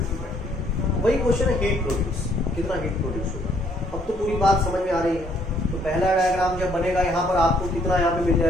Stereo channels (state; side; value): normal; both; correlation 0.66